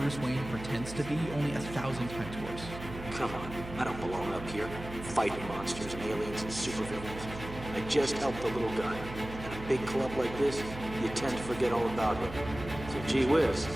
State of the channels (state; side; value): noise; right; hum, 11 dB below the sound